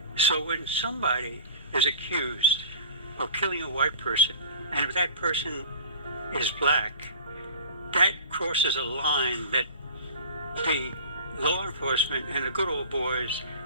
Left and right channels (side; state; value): both; inverted; correlation -0.40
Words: So when somebody is accused of killing a white person, and if that person is black, that crosses a line that the law enforcement and the good old boys